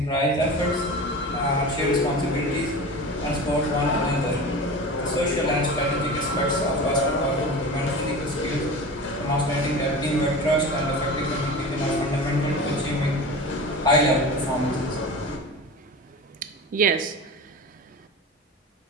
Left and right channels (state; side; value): normal; both; correlation 0.32